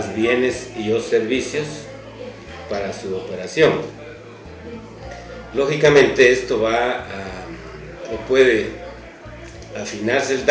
bienes y o servicios para su operación. Lógicamente esto puede afinarse el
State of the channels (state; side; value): identical; both; correlation 1.00